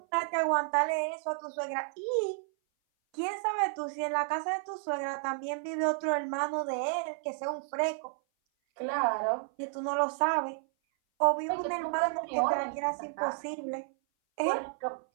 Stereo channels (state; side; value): silent; left; 56 dB below the other